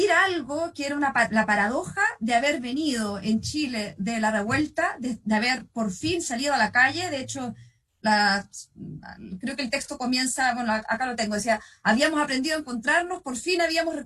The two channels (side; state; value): both; identical; correlation 1.00